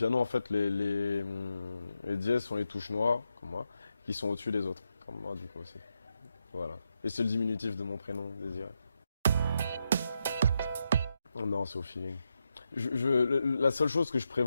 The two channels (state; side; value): inverted; both; correlation -0.85